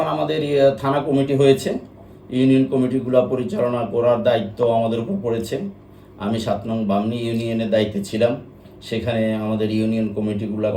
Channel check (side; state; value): both; identical; correlation 1.00